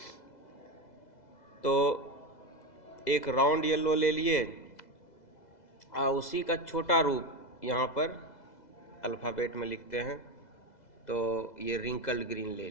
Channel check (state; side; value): late; right; 2.0 ms